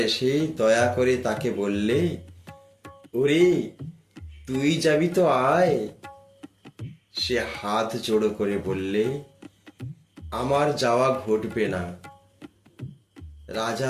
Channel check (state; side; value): identical; both; correlation 1.00